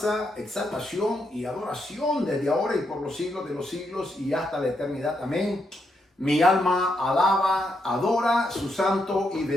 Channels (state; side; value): normal; both; correlation 0.80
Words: exaltación y adoración desde ahora y por los siglos de los siglos y hasta la eternidad. Amén. Mi alma alaba, adora su santo y